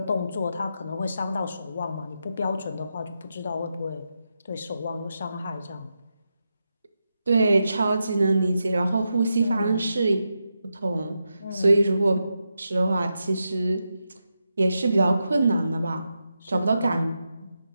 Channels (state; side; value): inverted; both; correlation -0.87